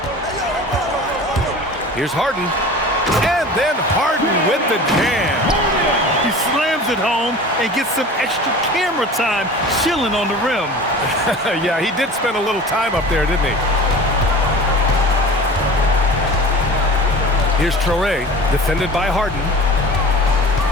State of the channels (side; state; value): both; normal; correlation 0.38